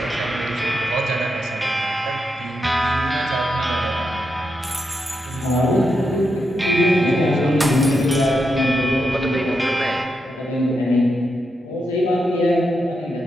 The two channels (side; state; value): both; normal; correlation 0.85